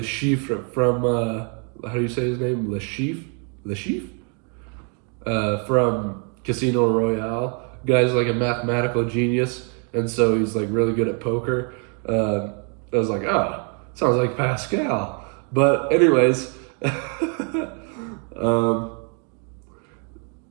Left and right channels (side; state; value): left; quieter; 39.7 dB